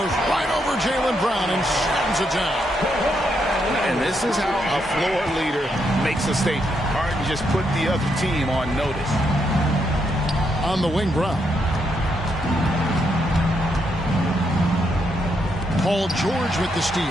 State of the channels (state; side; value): normal; both; correlation 0.78